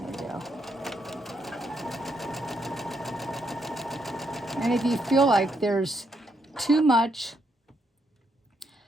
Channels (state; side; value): normal; both; correlation 0.77